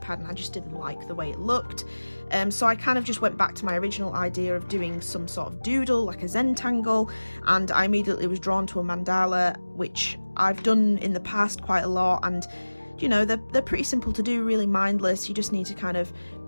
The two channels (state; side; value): inverted; both; correlation -1.00